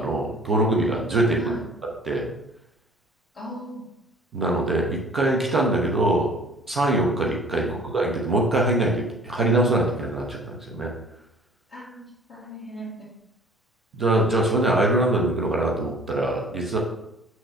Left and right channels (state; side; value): normal; both; correlation 0.50